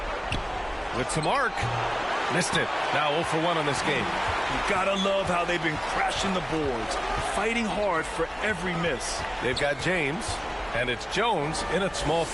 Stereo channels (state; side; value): identical; both; correlation 1.00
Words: With some arc. Missed it. Now 0 for 1 on this game. You gotta love how they've been crashing the boards, fighting hard for every miss. They've got James, and it's Jones in at small